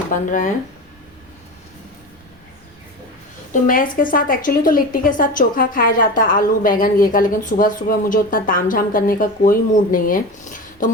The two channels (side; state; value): both; normal; correlation 0.28